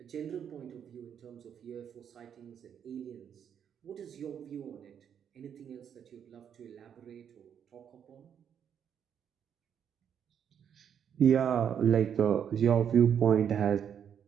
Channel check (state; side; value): quieter; left; 8.4 dB